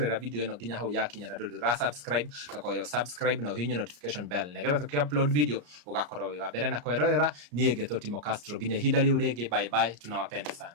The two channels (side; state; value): left; late; 34 ms